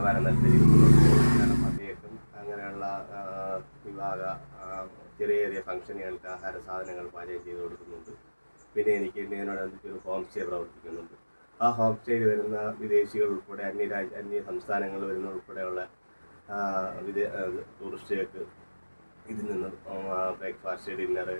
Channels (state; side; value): inverted; both; correlation -1.00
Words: നല്ല രീതിയിൽ അദ്ദേഹം അങ്ങനെയുള്ള വിവാഹ ചെറിയ ഫംഗ്ഷനുകൾക്ക് ആഹാര സാധനങ്ങൾ പാചകം ചെയ്ത് കൊടുക്കുന്നുണ്ട്. പിന്നെ എനിക്ക് ഇതിനോടനുബന്ധിച്ച് ഒരു ഹോം സ്റ്റേ പ്രവർത്തിക്കുന്നുണ്ട്. ആ ഹോം സ്റ്റേയിൽ വരുന്ന വിദേശികൾ ഉൾപ്പെടെ അന്യ സംസ്ഥാനങ്ങളിൽ വരുന്ന ഉൾപ്പെടെയുള്ള ടൂറിസ്റ്റുകൾക്ക് ഇതിൽ നിന്ന് ബ്രേക്ക്ഫാസ്റ്റ്, ഡിന്നർ,